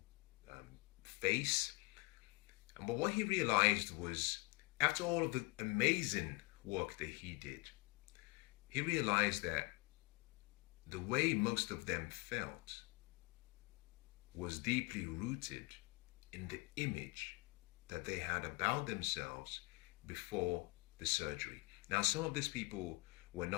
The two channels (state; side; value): quieter; right; 26.8 dB